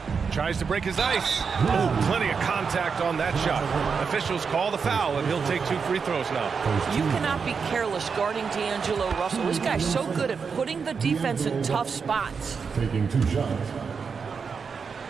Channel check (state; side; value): quieter; left; 5.7 dB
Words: Tries to break his ice. Oh, plenty of contact on that shot. Officials call the foul, and he'll take 2 free throws now. You cannot be careless guarding D'Angelo Russell. This guy's so good at putting the defense in tough spots. Taking 2 shots.